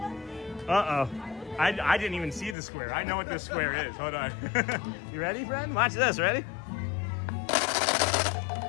I didn't even see the square. I know what this square is. Hold on. You ready, friend? Watch this. Ready?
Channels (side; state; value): right; drops out; at 2.6 s